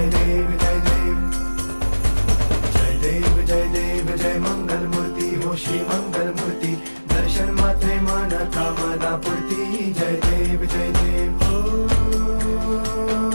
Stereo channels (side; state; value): both; inverted; correlation -1.00